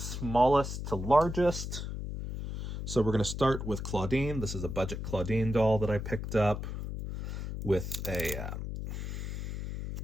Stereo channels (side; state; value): left; noise; hum, 5 dB below the sound